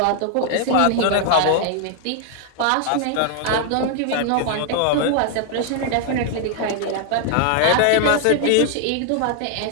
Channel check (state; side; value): different; both; correlation 0.00